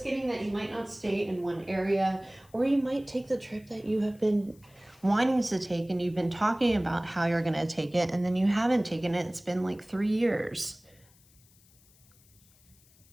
getting that you might not stay in one area, or you might take the trip that you have been wanting to take, and you've been talking about how you're going to take it, and then you haven't taken it. It's been like 3 years.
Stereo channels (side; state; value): left; noise; hiss, 29 dB below the sound